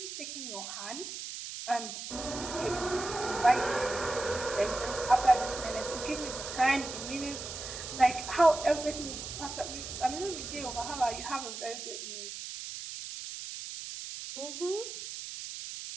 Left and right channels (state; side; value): noise; right; hiss, 8 dB below the sound